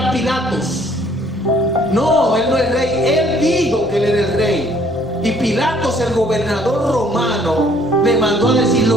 Pilatos: no, él no es rey. Él dijo que él era el rey. Y Pilatos, el gobernador romano, le mandó a decir:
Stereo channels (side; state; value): both; normal; correlation 0.61